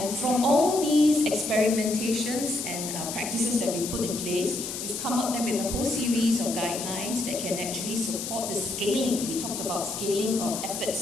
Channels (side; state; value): left; noise; hiss, 6 dB below the sound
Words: from all these experimentations and practices that we put in place, we've come up then with a whole series of guidelines that can actually support the scaling. We talked about scaling of